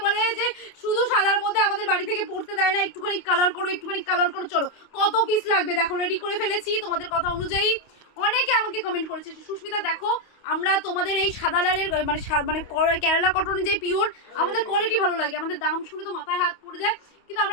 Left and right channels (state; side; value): late; right; 28 ms